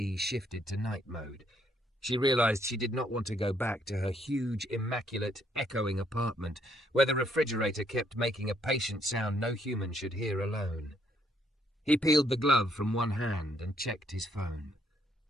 shifted to night mode. She realized she did not want to go back to her huge, immaculate, echoing apartment where the refrigerator kept making a patient sound no human should hear alone. He peeled the glove from one hand and checked his phone.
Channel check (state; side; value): normal; both; correlation 0.71